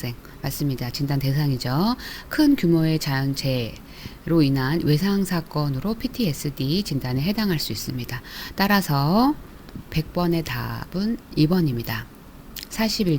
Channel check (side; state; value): both; identical; correlation 1.00